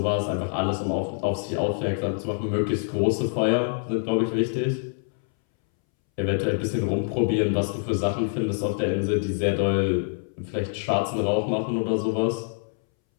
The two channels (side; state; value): right; silent; 61 dB below the other